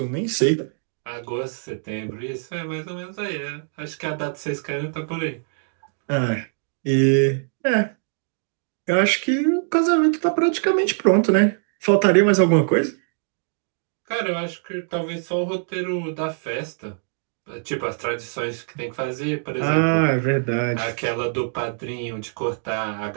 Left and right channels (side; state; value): left; silent; digital silence